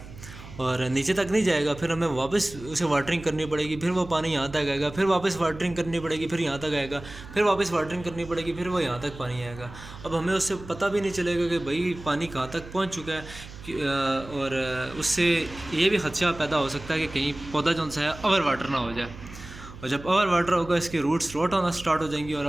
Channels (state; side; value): noise; right; hum, 15 dB below the sound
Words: और नीचे तक नहीं जाएगा, फिर हमें वापस उसे वाटरिंग करनी पड़ेगी, फिर वो पानी यहाँ तक आएगा, फिर वापस वाटरिंग करनी पड़ेगी, फिर यहाँ तक आएगा, फिर वापस वाटरिंग करनी पड़ेगी, फिर वो यहाँ तक पानी आएगा। अब हमें उससे पता भी नहीं चलेगा कि भाई पानी कहाँ तक पहुँच चुका है। और उससे ये भी खदशा पैदा हो सकता है कि कहीं पौधा जो सा है ओवर वाटर ना हो जाए, और जब ओवर वाटर होगा इसके रूट्स रोट होना स्टार्ट हो जाएंगी और